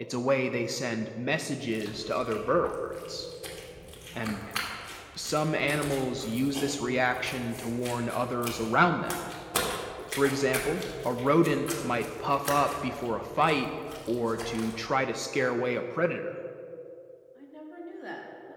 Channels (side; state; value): both; identical; correlation 1.00